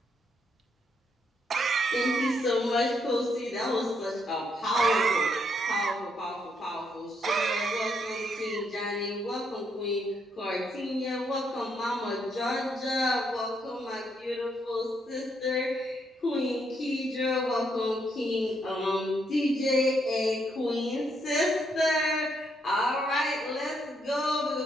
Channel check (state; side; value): normal; both; correlation 0.75